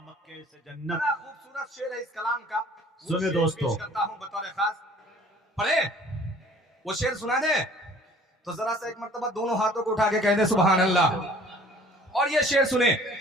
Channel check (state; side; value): normal; both; correlation 0.52